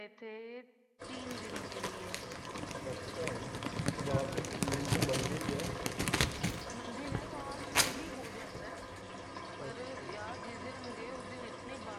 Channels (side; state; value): both; identical; correlation 1.00